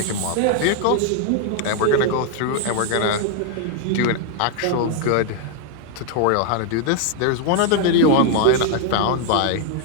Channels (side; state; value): both; different; correlation 0.00